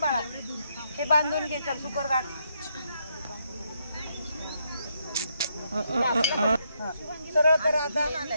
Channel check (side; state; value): both; inverted; correlation -0.77